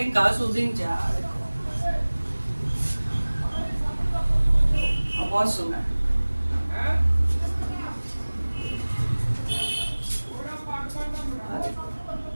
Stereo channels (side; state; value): both; inverted; correlation -1.00